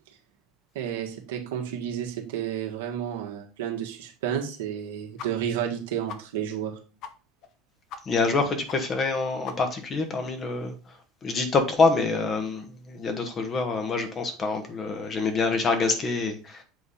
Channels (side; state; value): both; normal; correlation 0.48